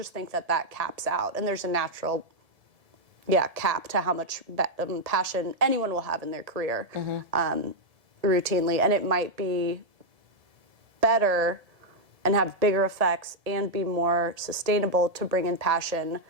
think that caps out. And there's a natural, cap to how much passion anyone will have in their career routinely. And it might be better and have bigger effects and be more sustainable to bring in passion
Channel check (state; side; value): late; left; 1.7 ms